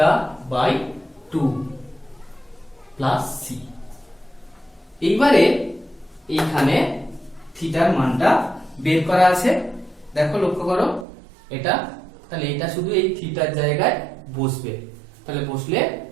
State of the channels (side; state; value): left; drops out; at 11.1 s